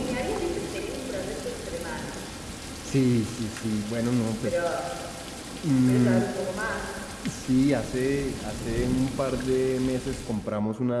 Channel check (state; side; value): identical; both; correlation 1.00